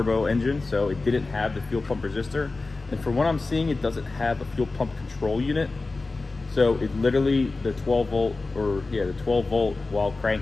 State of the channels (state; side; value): quieter; right; 3.5 dB